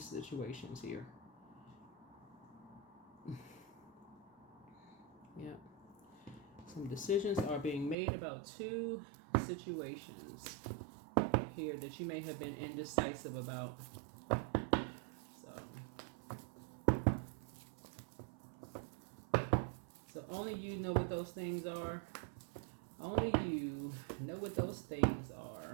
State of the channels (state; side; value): drops out; left; at 8.0 s